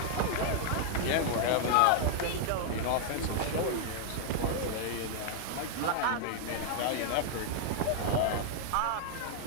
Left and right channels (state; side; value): different; both; correlation 0.00